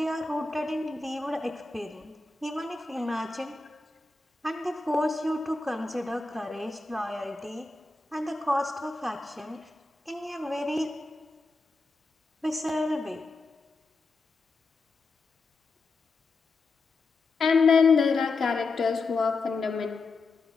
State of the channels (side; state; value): right; quieter; 3.7 dB